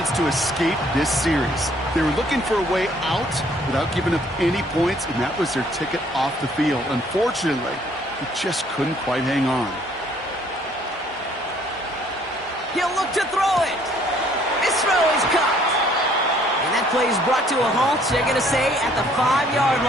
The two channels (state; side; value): normal; both; correlation 0.61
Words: to escape this series. They were looking for a way out without giving up any points, and that was their ticket off the field. Unfortunately, he just couldn't quite hang on. He'll look to throw it. His throw is caught. And that play is brought to a halt, they're going to say, at the 5-yard